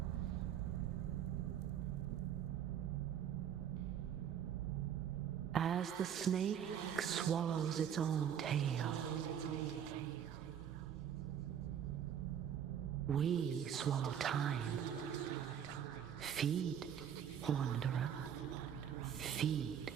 as the snake swallows its own tail. We swallow time. Feed, wanderer. Feed.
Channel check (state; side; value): quieter; left; 8.9 dB